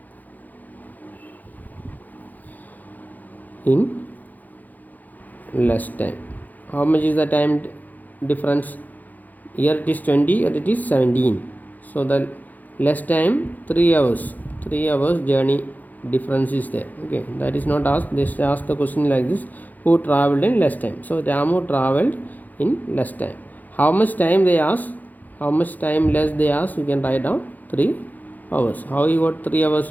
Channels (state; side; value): late; right; 0.082 ms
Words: in less time. How much is the time difference? Here it is 20 and it is 17. So the less time 3 hours. 3 hours journey difference is there. Okay, that is not asked. They ask the question like this: who traveled in less time? So Ramu traveled in less time. How much time they ask? How much time less they ask? You can write down 3 hours. How you got 3